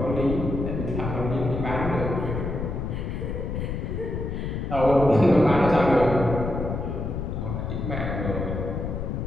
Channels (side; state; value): left; noise; rumble, 3 dB below the sound